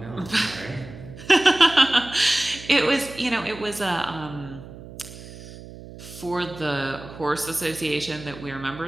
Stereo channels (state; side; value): noise; right; hum, 15 dB below the sound